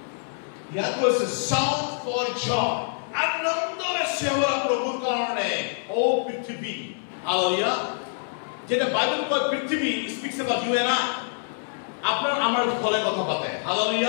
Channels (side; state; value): right; silent; 61 dB below the other